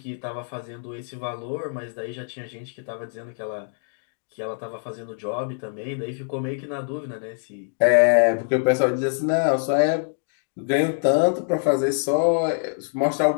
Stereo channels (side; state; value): right; silent; digital silence